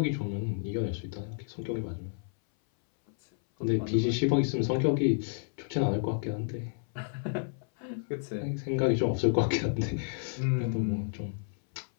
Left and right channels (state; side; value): silent; right; 57 dB below the other